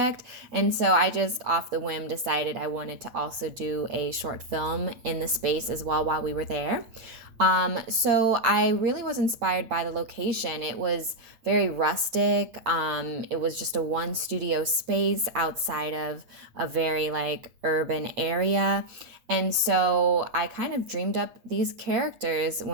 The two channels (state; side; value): late; left; 8.7 ms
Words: and so I just off the whim decided I wanted to also do a short film in the space as well while we were there. So I really was inspired by the location. It was very rustic. It was just a one studio space outside of a very like urban area. And so I kind of dreamed up these characters